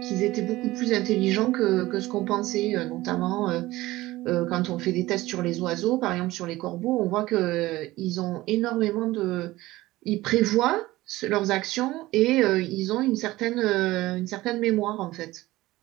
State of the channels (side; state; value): left; quieter; 18.0 dB